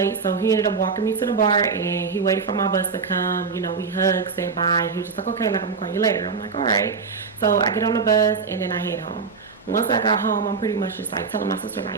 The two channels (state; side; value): quieter; left; 5.1 dB